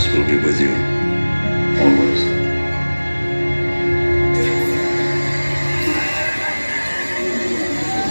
will be with you. Always.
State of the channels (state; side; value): inverted; both; correlation -1.00